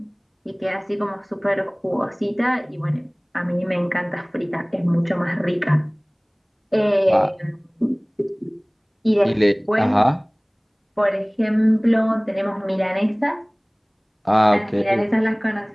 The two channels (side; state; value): both; identical; correlation 1.00